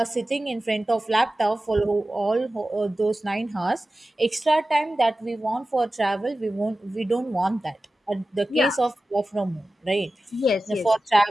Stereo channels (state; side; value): normal; both; correlation 0.95